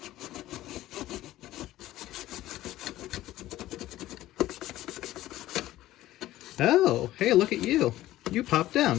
Oh, hey, look at you. You popped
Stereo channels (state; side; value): quieter; right; 15.1 dB